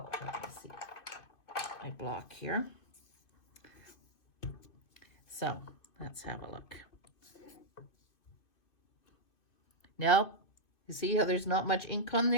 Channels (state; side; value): late; right; 2.4 ms